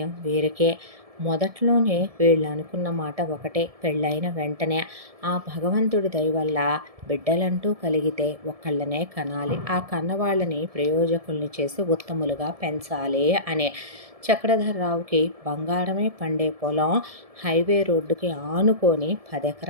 వీరికే. మొదట్లోనే వీళ్ళు అనుకున్న మాట ఒకటే, పెళ్ళైన వెంటనే ఆ భగవంతుడి దయ వల్ల బిడ్డలంటూ కలిగితే ఒక్కళ్ళనే కనాలి, ఆ కన్నవాళ్ళని ప్రయోజకుల్ని చేసి ఉత్తములుగా పెంచాలి అనే. చక్రధర్రావుకి బంగారమే పండే పొలం హైవే రోడ్డుకి ఆనుకొని 10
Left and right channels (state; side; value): late; left; 1.7 ms